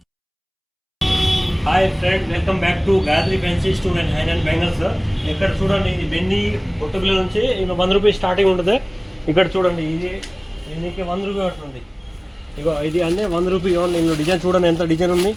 hi friend, welcome back to Gayatri fancy store and high and bangles. ఇక్కడ చూడండి, ఇది బెన్నీ పొట్టుపిల్ల నుంచి ఇంకా 100 రూపీస్ స్టార్టింగ్ ఉంటుంది. ఇక్కడ చూడండి, ఇది నీకు 100 రూపీ పడుతుంది. ఇగో ఇది అంటే 100 రూపీ ఓన్లీ. ఇందులో డిజైన్ చూడండి, ఎంత డిజైన్ ఉంది.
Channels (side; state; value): both; identical; correlation 1.00